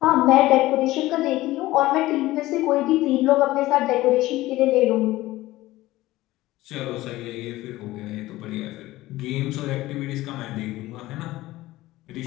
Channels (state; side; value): quieter; right; 17.3 dB